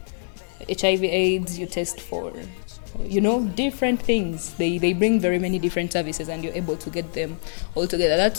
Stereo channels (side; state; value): right; silent; digital silence